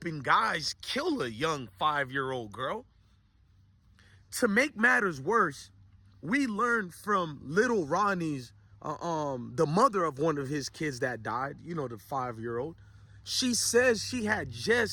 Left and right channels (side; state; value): both; identical; correlation 1.00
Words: guys kill a young 5-year-old girl. To make matters worse, we learned from little Ronnie's the mother of one of his kids that died, you know, the 5-year-old. She says she had